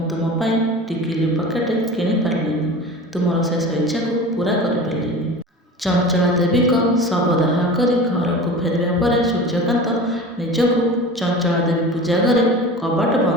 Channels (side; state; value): both; normal; correlation 0.35